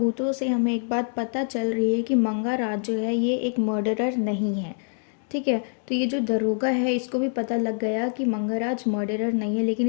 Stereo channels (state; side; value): silent; right; 62 dB below the other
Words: से हमें एक बात पता चल रही है कि मंगाराज जो है ये एक मर्डरर नहीं है। ठीक है, तो ये जो दरोगा है इसको भी पता लग गया कि मंगाराज मर्डरर नहीं है, लेकिन